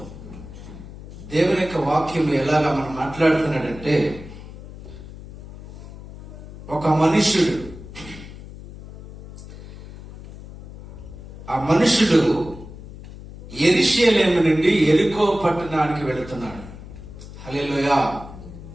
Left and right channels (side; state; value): left; noise; hum, 15 dB below the sound